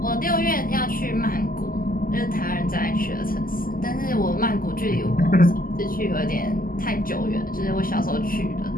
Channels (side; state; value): right; late; 0.42 ms